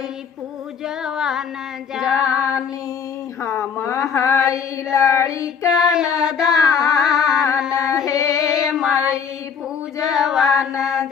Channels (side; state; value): right; quieter; 6.8 dB